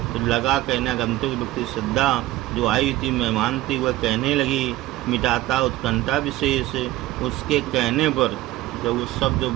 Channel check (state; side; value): quieter; left; 16.8 dB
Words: तो लगा कहने आगंतुक व्यक्ति, श्रद्धा जो आई हुई थी, मेहमान थी, वह कहने लगी, मिटाता उत्कंठा विशेष। उसके कहने पर जब वो शब्द